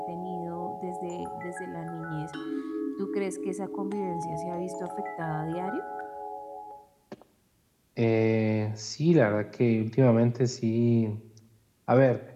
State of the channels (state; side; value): identical; both; correlation 1.00